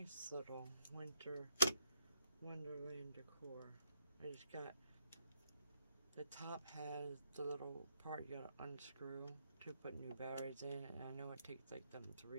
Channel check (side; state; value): both; inverted; correlation -0.74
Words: little winter wonderland decor. I just got, the top has the little part you gotta unscrew to put new batteries in, and I know it takes like them